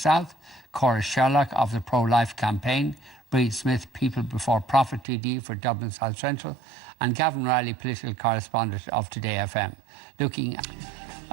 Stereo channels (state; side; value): drops out; left; at 5.1 s